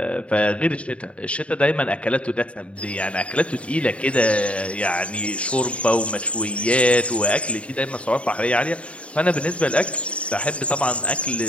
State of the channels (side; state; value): right; late; 0.062 ms